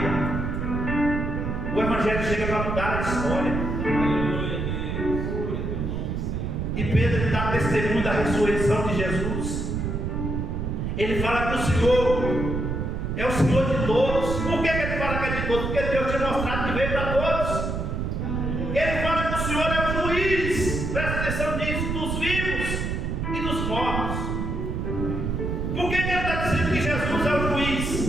o Evangelho chega para mudar a história. E Pedro dá testemunho da ressurreição de Jesus. Ele fala que o Senhor é o Senhor de todos. Por que ele fala que é de todos? Porque Deus tinha mostrado que veio para todos. Ele fala que o Senhor é o juiz, presta atenção nisso, dos vivos e dos mortos. Por que ele está dizendo que Jesus é o juiz?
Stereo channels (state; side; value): noise; right; rumble, 2 dB below the sound